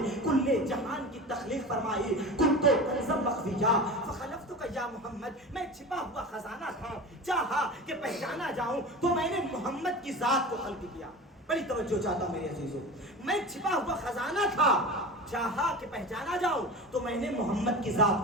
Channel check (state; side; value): normal; both; correlation 0.31